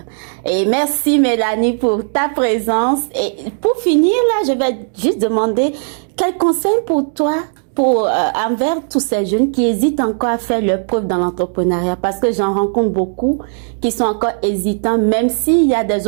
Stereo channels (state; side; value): silent; left; 63 dB below the other